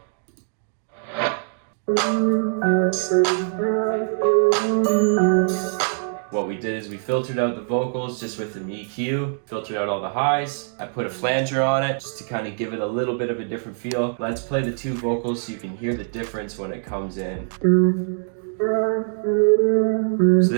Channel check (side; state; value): left; silent; digital silence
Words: What we did is we filtered out the vocals just with an EQ, filtered out all the highs. I put a flanger on it just to kind of give it a little bit of a different feel. Let's play the 2 vocals so you can hear the difference when it comes in. So